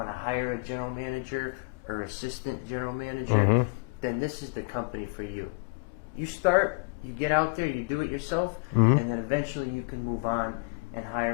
to hire a general manager or assistant general manager, then this is the company for you. You start, you get out there, you do it yourself, and then eventually you can move on and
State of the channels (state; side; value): quieter; right; 32.4 dB